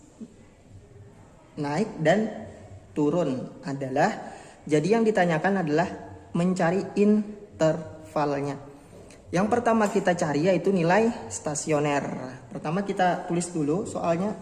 Naik dan turun adalah, jadi yang ditanyakan adalah mencari intervalnya. Yang pertama kita cari yaitu nilai stasioner. Pertama kita tulis dulu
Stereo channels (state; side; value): identical; both; correlation 1.00